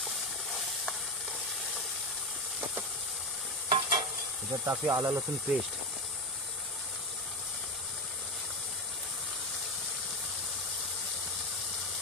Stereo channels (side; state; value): both; normal; correlation 0.15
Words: त्याच्यात टाकूया आला लसूण पेस्ट.